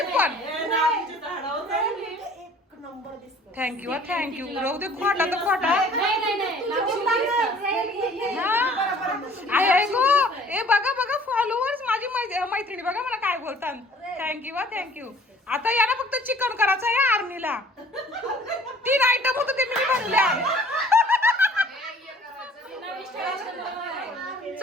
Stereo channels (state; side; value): normal; both; correlation 0.53